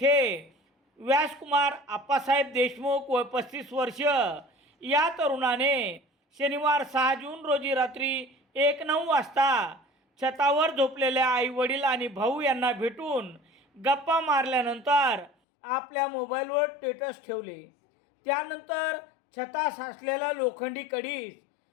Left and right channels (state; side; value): drops out; right; at 15.3 s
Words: व्यासकुमार आप्पासाहेब देशमुख व 35 वर्ष या तरुणाने शनिवार 6 जून रोजी रात्री 1:09 वाजता छतावर झोपलेल्या आईवडील आणि भाऊ यांना भेटून गप्पा मारल्यानंतर आपल्या मोबाईलवर स्टेटस ठेवले. त्यानंतर छतास असलेला लोखंडी कडीस